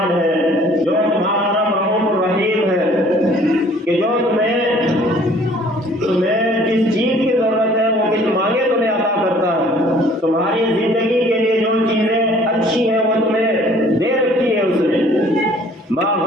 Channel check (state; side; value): normal; both; correlation 0.55